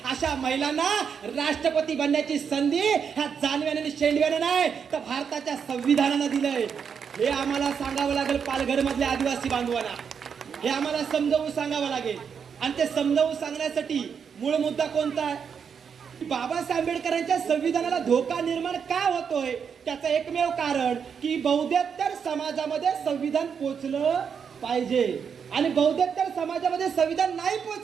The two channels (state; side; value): quieter; left; 6.8 dB